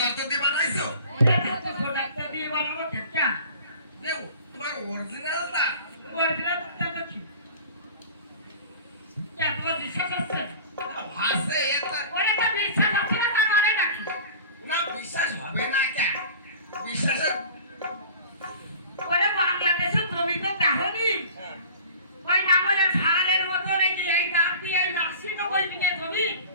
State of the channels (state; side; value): inverted; both; correlation -0.42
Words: দিয়ে বানাইছো? ডাক্তার দিয়ে বানাবো কেটা দেও তোমার অরিজিনাল দাঁত? অরিজিনাল ডাক্তার কি কেন বিশ্বাস আছে ভাসে এটা ওরে তো বিশ্বাস আছে না তার মানে নাকি না বিশ্বাস হবে না কেন? বিশ্বাসের ওরে বাংলাদেশে তুমি তো দেখোনি ওই নাঙ্গলের ছাগলের মতো নাকি এই দাঁত দিয়ে এই নার্সি তো বলবি না জমি